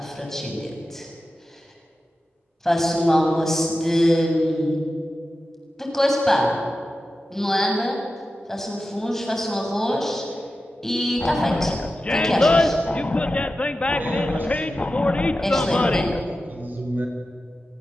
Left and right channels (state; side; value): normal; both; correlation 0.93